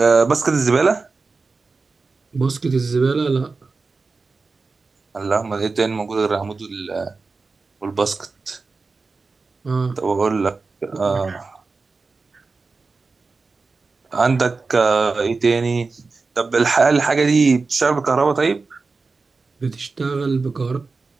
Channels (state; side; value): quieter; left; 4.1 dB